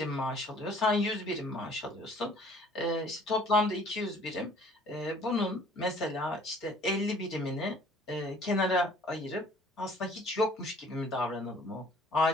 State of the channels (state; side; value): normal; both; correlation 0.55